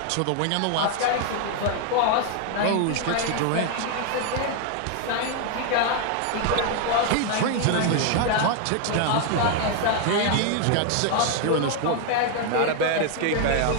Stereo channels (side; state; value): both; different; correlation 0.00